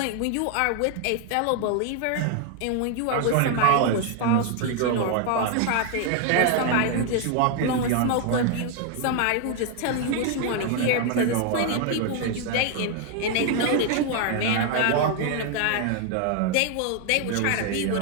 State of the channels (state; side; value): different; both; correlation 0.01